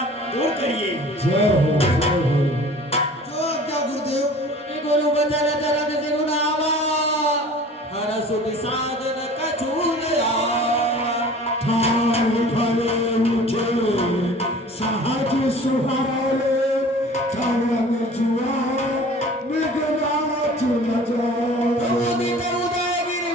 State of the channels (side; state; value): both; normal; correlation 0.45